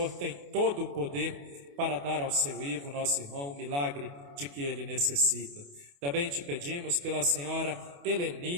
tem todo o poder para dar ao seu Ivo, nosso irmão, o milagre de que ele necessita. Também te pedimos pela senhora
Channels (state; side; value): late; left; 28 ms